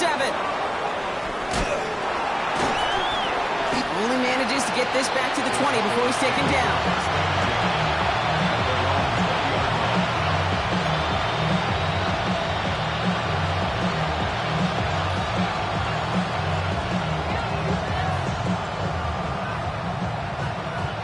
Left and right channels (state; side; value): identical; both; correlation 1.00